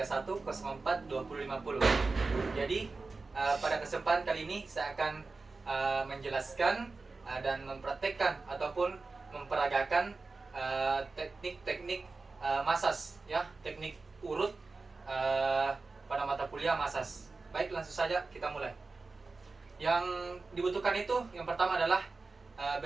Jadi, pada kesempatan kali ini saya akan menjelaskan dan mempraktekkan ataupun memperagakan teknik-teknik masas, ya, teknik urut pada mata kuliah masas. Baik, langsung saja kita mulai. Yang dibutuhkan itu yang pertama adalah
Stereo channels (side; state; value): left; quieter; 3.9 dB